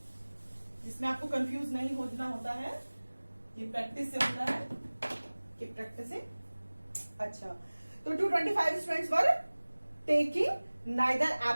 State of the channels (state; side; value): inverted; both; correlation -1.00